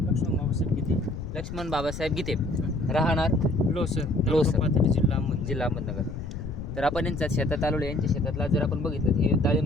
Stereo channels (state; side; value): noise; left; rumble, 8 dB below the sound